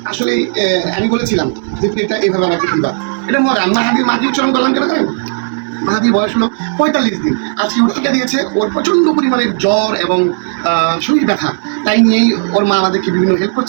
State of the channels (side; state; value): left; silent; digital silence